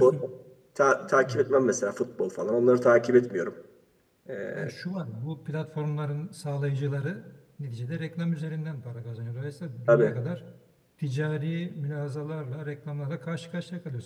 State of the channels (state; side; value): identical; both; correlation 1.00